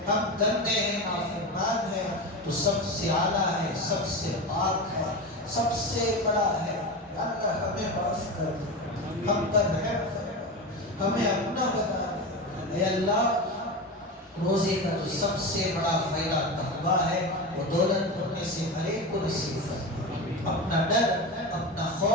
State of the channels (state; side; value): normal; both; correlation 0.23